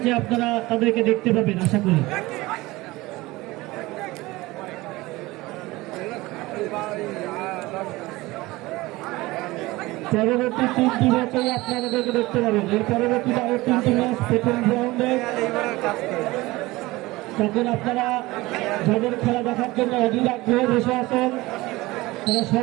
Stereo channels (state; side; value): quieter; left; 20.2 dB